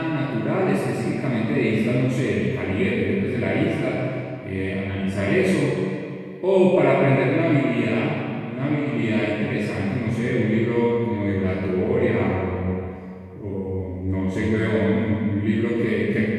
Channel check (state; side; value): identical; both; correlation 1.00